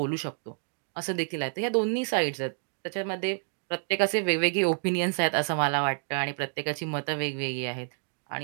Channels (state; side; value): silent; left; digital silence